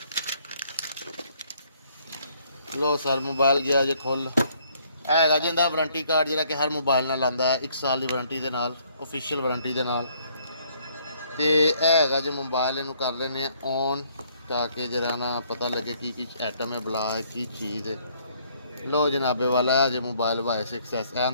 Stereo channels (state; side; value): inverted; both; correlation -0.65